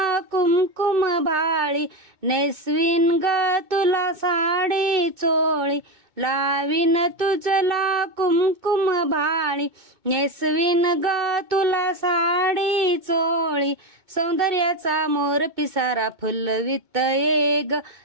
कुमकुम भाळी, नेसवीन ग तुला साडी चोळी, लावीन तुझला कुमकुम भाळी, नेसवीन ग तुला साडी चोळी, सौंदर्याचा मोर पिसारा फुलवित ये ग,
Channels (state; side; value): late; left; 2.2 ms